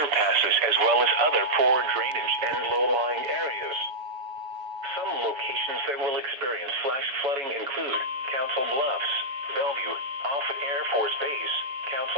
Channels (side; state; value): left; late; 6.9 ms